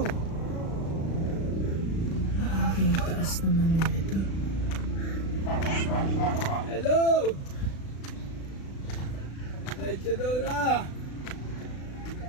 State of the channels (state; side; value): late; right; 36 ms